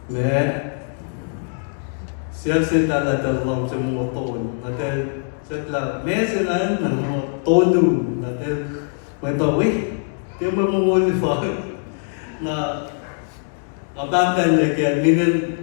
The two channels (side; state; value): right; silent; digital silence